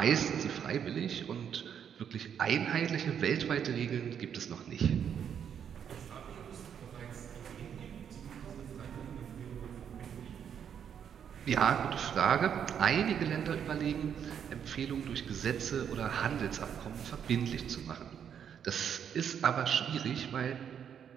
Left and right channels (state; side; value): quieter; left; 8.3 dB